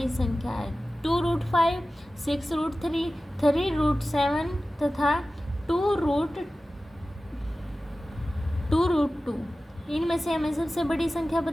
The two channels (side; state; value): both; normal; correlation 0.95